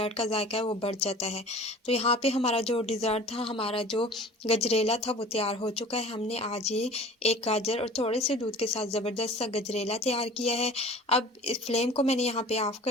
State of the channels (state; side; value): normal; both; correlation 0.43